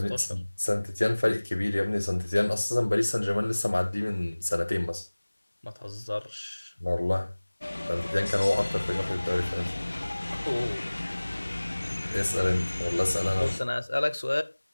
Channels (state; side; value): inverted; both; correlation -1.00